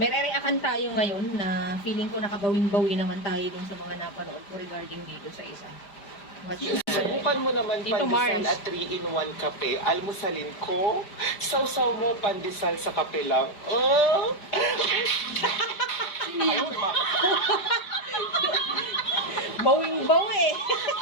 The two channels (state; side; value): late; right; 5.0 ms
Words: re-react tayo ngayon na feeling ko nakabawing-bawi naman tayo dun sa mga napanood ko regarding dito sa isa. Watch it. Subukan mo naman Tito pandesal Mars. at 3-in-1 kape. Almusalin ko. Sausaw mo pandesal sa kape lang. Oh! Bawing-bawi.